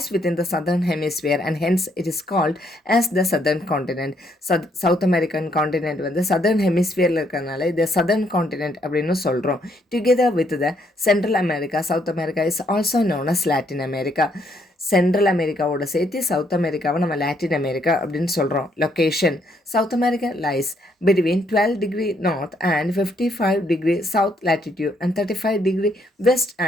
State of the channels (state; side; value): normal; both; correlation 0.72